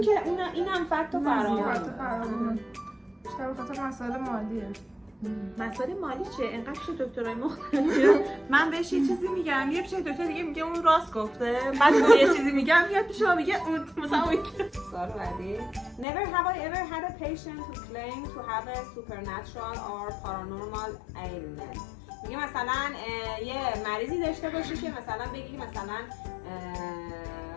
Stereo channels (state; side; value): drops out; right; at 16.1 s